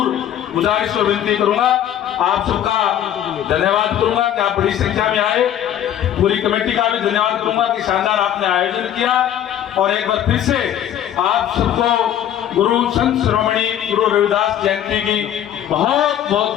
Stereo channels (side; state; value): right; quieter; 10.7 dB